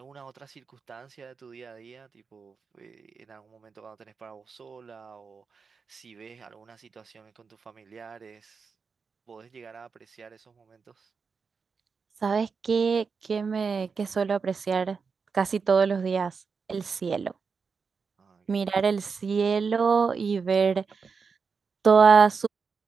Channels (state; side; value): quieter; left; 5.3 dB